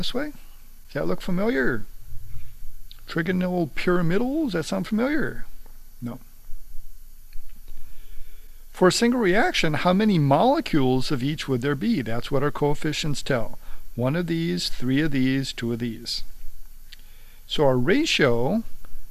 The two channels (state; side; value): identical; both; correlation 1.00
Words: way. Does that look familiar? Trigonal pyramidal, does that sound familiar? No. For a single reaction, how many molecules of each would there be? That's what our coefficients tell. 1 of these, 3 of these, 2 of these. So our ratio